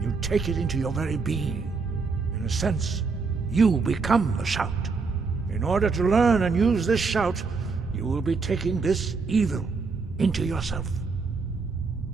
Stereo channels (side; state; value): left; quieter; 4.6 dB